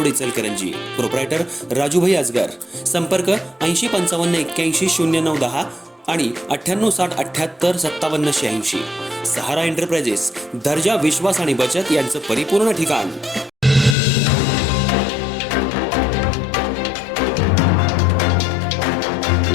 Ichalkaranji. Proprietor Rajubhai Aajgar. संपर्क 8055810910 आणि 9860785786। सहारा एंटरप्राइजेस, दर्जा, विश्वास आणि बचत यांचं परिपूर्ण ठिकाण।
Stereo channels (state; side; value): drops out; right; at 14.0 s